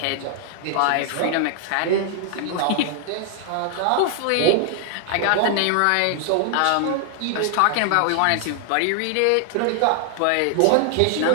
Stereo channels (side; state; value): both; different; correlation 0.00